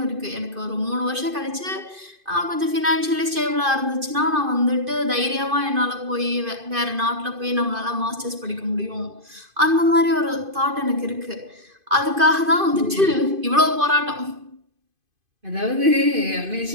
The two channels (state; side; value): late; left; 2.5 ms